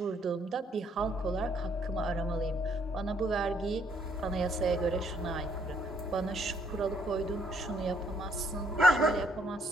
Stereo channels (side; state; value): both; normal; correlation 0.69